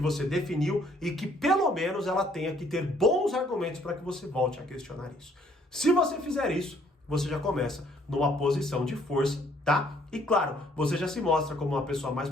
definiu e que pelo menos ela tenha que ter bons argumentos para que você volte a questionar isso. Se você fizer isso, você já começa numa posição de força, tá? E claro, você já se mostra como uma pessoa mais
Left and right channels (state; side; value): normal; both; correlation 0.64